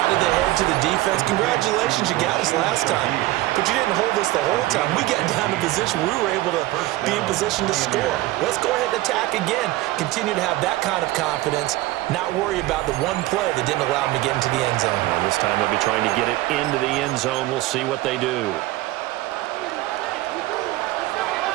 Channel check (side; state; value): left; quieter; 17.5 dB